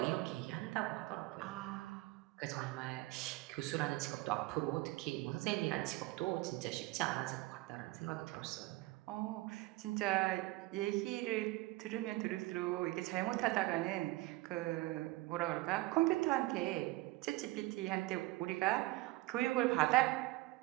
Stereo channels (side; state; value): left; quieter; 20.2 dB